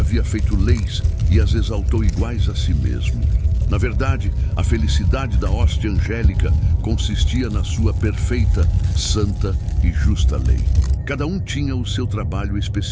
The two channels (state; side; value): identical; both; correlation 1.00